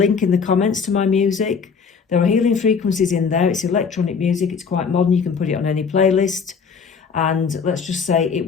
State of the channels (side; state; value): right; quieter; 5.8 dB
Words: in the comments to my music. There are healing frequencies in there. It's electronic music. It's quite modern. You can put it on any playlist. And let's just say it